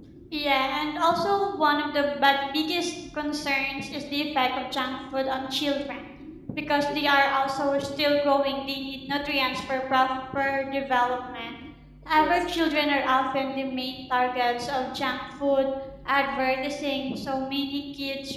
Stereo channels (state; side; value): identical; both; correlation 1.00